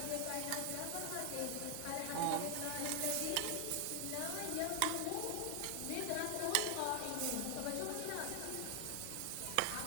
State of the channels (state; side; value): different; both; correlation 0.00